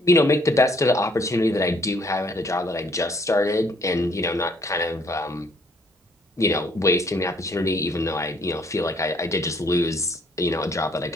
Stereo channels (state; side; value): normal; both; correlation 0.64